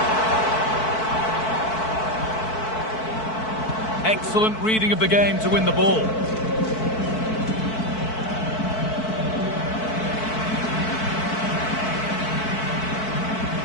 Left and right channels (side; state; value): right; late; 4.6 ms